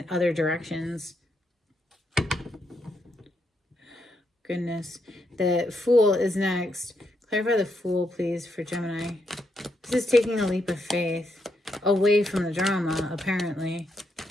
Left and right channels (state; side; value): normal; both; correlation 0.79